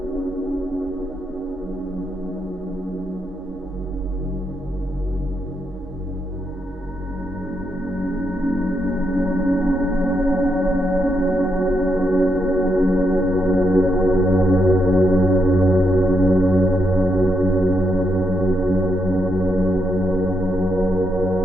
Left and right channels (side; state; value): both; normal; correlation 0.80